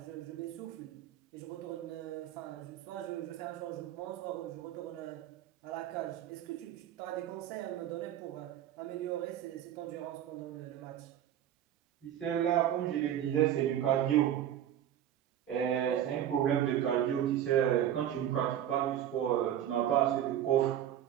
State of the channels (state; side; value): quieter; left; 10.9 dB